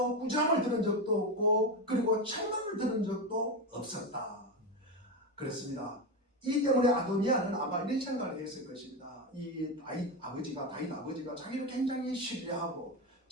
꾸지람을 들은 적도 없고 그리고 책망을 들은 적도 없었다. 그렇습니다. 이 때문에 아도니아는 아마 이런 생각을 했을 것입니다. 이 다윗 아버지가 자기를 굉장히 신뢰하고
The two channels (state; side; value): normal; both; correlation 0.15